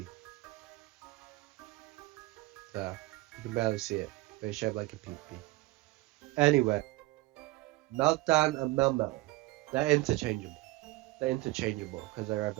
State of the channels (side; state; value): left; quieter; 20.3 dB